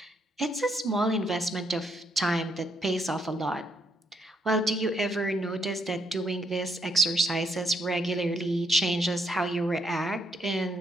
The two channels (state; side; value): normal; both; correlation 0.75